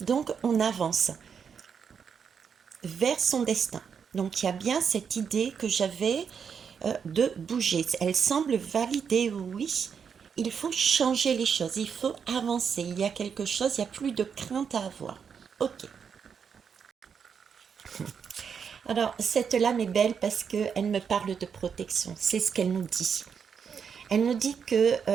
on avance vers son destin. Donc, il y a bien cette idée que j'avais de bouger. Elle semble valider, oui. Il faut changer les choses, il faut avancer. Il y a quelque chose, il n'y a plus de crainte à avoir. Ok. Alors, cette lame est belle parce qu'elle me parle de protection. C'est ce qu'elle nous dit. Elle nous dit que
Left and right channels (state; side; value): quieter; left; 6.8 dB